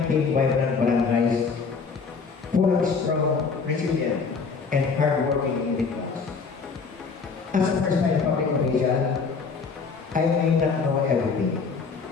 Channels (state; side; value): quieter; right; 5.0 dB